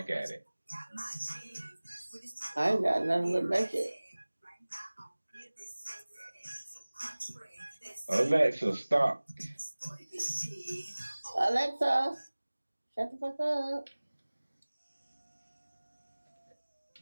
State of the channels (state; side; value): inverted; both; correlation -1.00